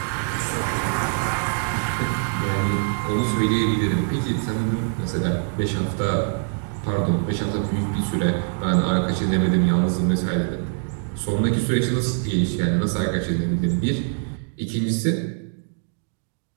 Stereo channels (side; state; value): left; silent; 63 dB below the other